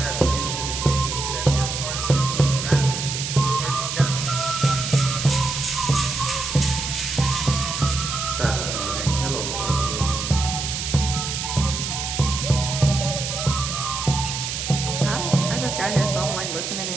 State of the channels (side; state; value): right; noise; hiss, 4 dB below the sound